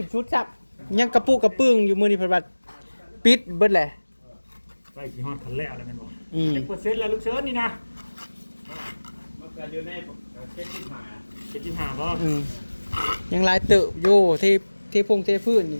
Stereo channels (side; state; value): both; inverted; correlation -1.00